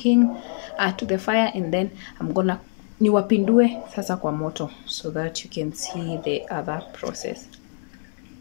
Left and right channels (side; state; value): right; silent; 62 dB below the other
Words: to the fire, and then I'm gonna niwapindue sasa kwa moto so that you can see the other process.